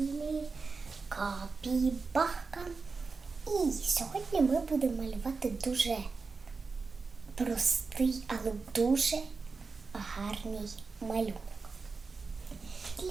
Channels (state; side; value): quieter; left; 4.4 dB